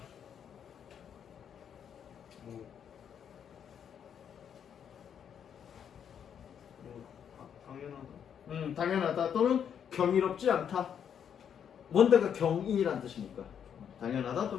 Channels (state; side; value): quieter; right; 8.3 dB